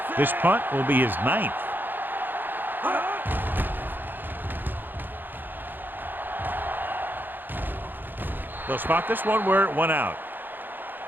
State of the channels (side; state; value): left; late; 0.092 ms